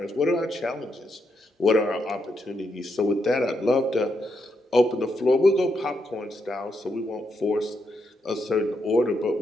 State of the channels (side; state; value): both; normal; correlation 0.81